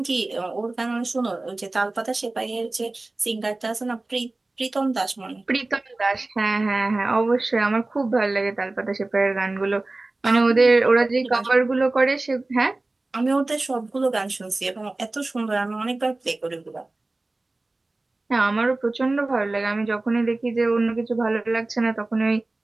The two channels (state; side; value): quieter; left; 3.0 dB